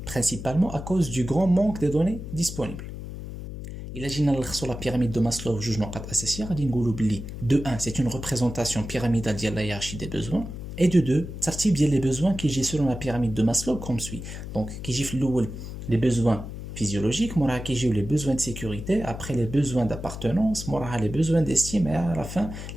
principalement à cause du grand manque des données disponibles. إلا جينا نلخصوا لا بيراميد دو ماسلو في جوج نقاط اساسيه غادي نقولوا بلي دو 1 سي اون ريبريزونطاسيون بيراميدال ديال لا هيرارشي دي بوزوان، اي دو 2 ترتيب ديال لي بوزوان كيجي سولون لا بيراميد دو ماسلو كوم سوي. دونك كيجي في الاول لي بوزوان physiologiques, موراها كيجيو les besoins de sécurité, après les besoins d'appartenance, موراها les besoins d'estime et à la fin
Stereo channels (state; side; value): noise; left; hum, 9 dB below the sound